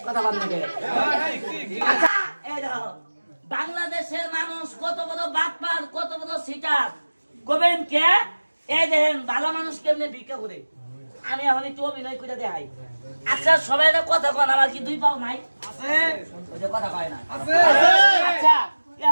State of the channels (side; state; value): both; inverted; correlation -1.00